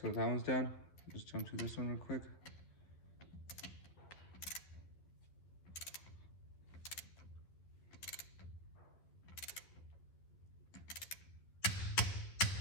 that one's done. Just jump to this one real quick.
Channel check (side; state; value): right; late; 11 ms